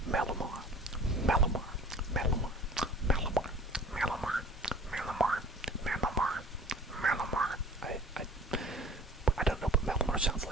Malamar. I don't know what Malamar sounds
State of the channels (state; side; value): normal; both; correlation 0.46